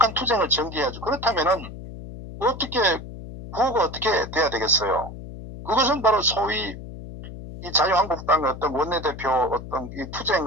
투쟁을 전개해야죠. 그렇다면은 어떻게 구호가 어떻게 돼야 되겠어요? 그것은 바로 소위 이 자유한국당의 어떤 원내대표 어떤 이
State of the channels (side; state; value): left; noise; hum, 12 dB below the sound